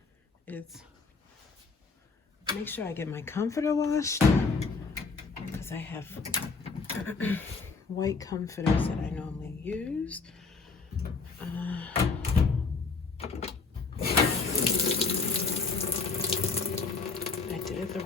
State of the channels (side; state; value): right; quieter; 4.5 dB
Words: is make sure I get my comforter washed, because I have white comforters that I normally use. I did it the